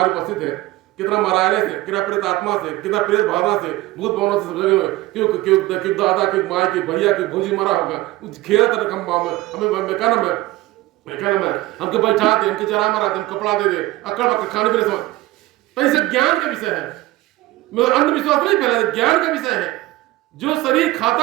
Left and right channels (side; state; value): left; quieter; 18.0 dB